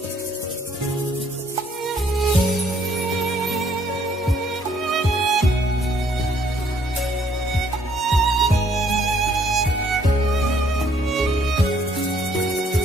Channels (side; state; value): both; normal; correlation 0.65